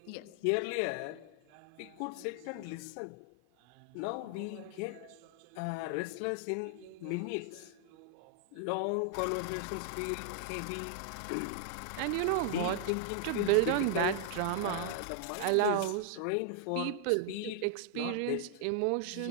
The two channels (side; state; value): both; different; correlation 0.00